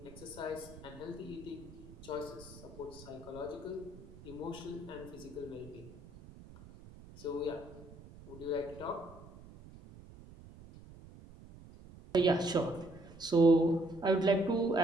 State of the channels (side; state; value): right; noise; rumble, 18 dB below the sound